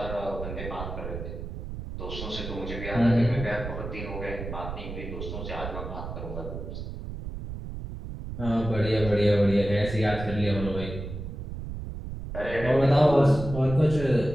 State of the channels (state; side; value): noise; right; rumble, 8 dB below the sound